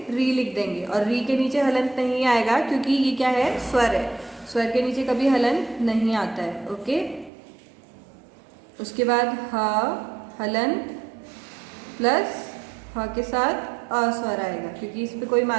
री लिख देंगे। और री के नीचे हलंत नहीं आएगा क्योंकि ये क्या है? स्वर है। स्वर के नीचे कभी हलंत नहीं आता है। ओके। उसके बाद ह हलंत प्लस ह के साथ अ स्वर आएगा क्योंकि इस पे कोई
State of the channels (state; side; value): drops out; left; at 7.3 s